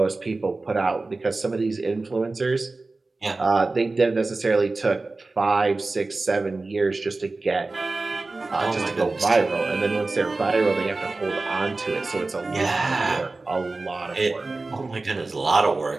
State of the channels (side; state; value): left; quieter; 3.4 dB